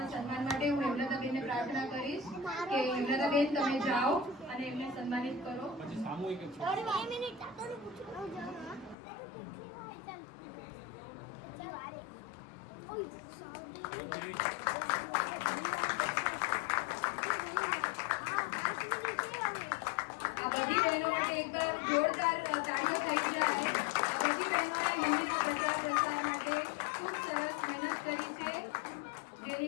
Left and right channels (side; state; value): right; drops out; at 9.0 s